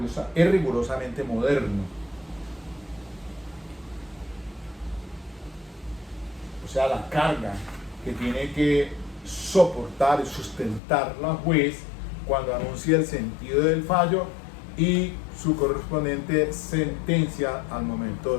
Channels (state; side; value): drops out; right; at 10.8 s